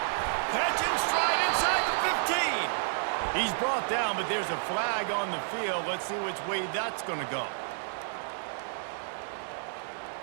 Catch and stride inside the 15. He's brought down, but there's a flag on the field. Let's see which way that's gonna go.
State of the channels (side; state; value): left; silent; digital silence